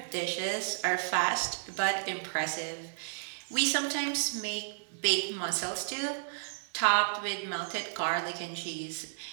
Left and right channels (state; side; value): silent; left; digital silence